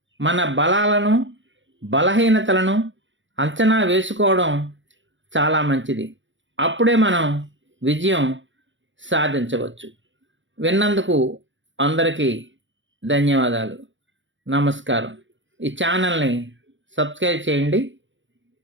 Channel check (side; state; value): left; late; 0.55 ms